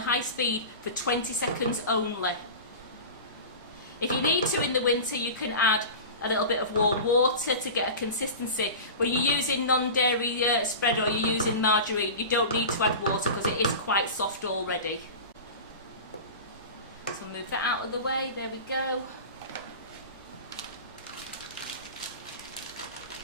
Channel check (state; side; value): inverted; both; correlation -0.31